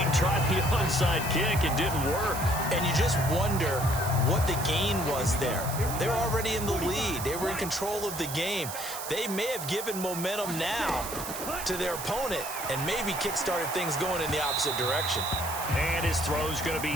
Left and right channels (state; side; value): noise; right; hiss, 8 dB below the sound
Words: Tried the onside kick. It didn't work. And you just wonder what the gain was there. They were already in the lead. They were in control of the game. They may have given momentum now to their opponent and maybe kick-started things going in the opposite direction. And his throw's going to